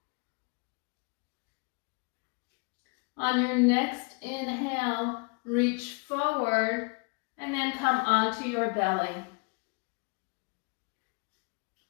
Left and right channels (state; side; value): quieter; right; 34.6 dB